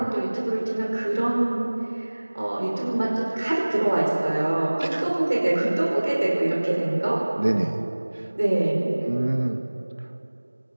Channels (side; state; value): both; inverted; correlation -1.00